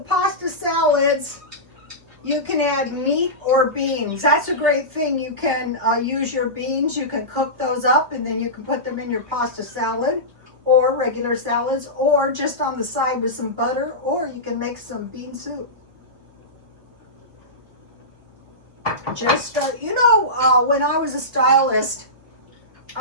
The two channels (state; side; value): late; left; 2.8 ms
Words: pasta salads, You can add meat or beans. That's a great thing. You can use your beans. You can cook those up and then you can put them in your pasta salad or regular salads or just on the side with some butter, or you can make some bean soup. Just, when I was a stylist,